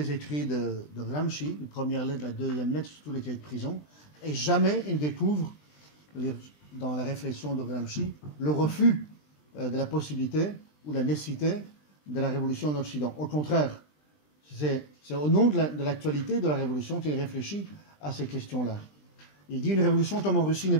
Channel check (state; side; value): late; right; 20 ms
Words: écrits de Gramsci, la première lettre, la deuxième lettre, sur tous les cahiers de prison, et jamais ils découvrent, dans la réflexion de Gramsci, le refus de la possibilité ou la nécessité de la révolution en Occident. Au contraire, c'est au nom de l'actualité de la révolution qu'il réfléchit à ces questions-là. Il dit une révolution comme en Russie n'est